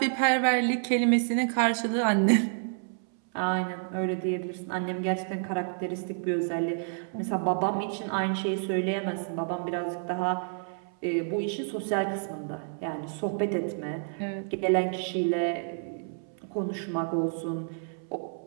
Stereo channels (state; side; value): silent; left; 58 dB below the other